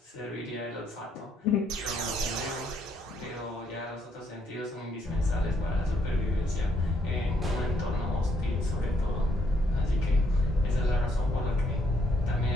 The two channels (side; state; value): both; normal; correlation 0.71